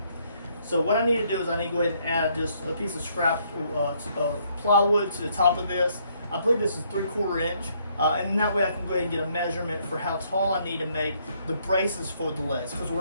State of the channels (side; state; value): both; inverted; correlation -0.69